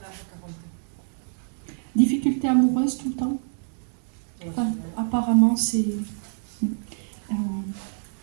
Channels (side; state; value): left; silent; digital silence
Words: Difficulté amoureuse tout le temps. Enfin, apparemment, c'est...